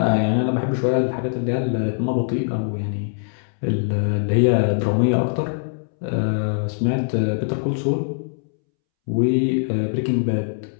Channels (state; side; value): silent; right; 64 dB below the other